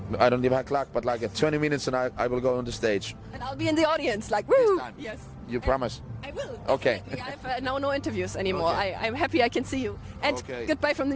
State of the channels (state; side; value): identical; both; correlation 1.00